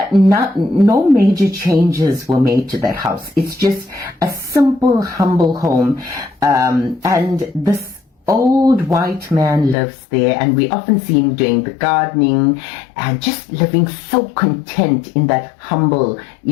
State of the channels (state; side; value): drops out; right; at 9.8 s